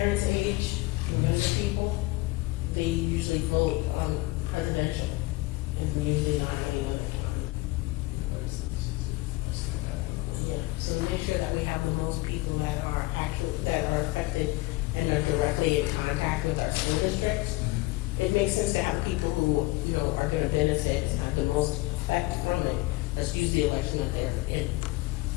age. For younger people, they usually vote on presidential and usually not any other time. Yeah, so to make sure that we have the most people that are affected and are directly in contact with our school districts, it makes sense to have the people who are going to benefit and have the most effect from it. Let's use the election that they're in.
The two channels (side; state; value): right; quieter; 20.7 dB